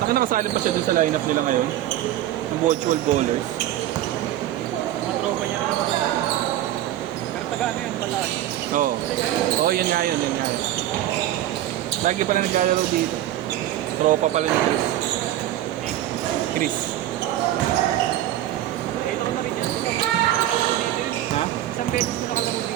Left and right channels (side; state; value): left; quieter; 13.2 dB